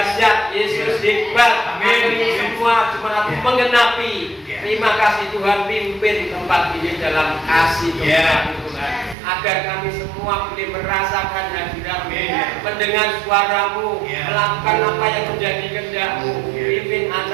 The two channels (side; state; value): left; drops out; at 9.2 s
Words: Yesus hebat. Kami semua cuma menggenapi. Terima kasih Tuhan, pimpin tempat ini dalam kasih Tuhan. Agar kami semua boleh merasakan hadirat-Mu, mendengar suara-Mu, melakukan apa yang menjadi kehendak-Mu. Pimpin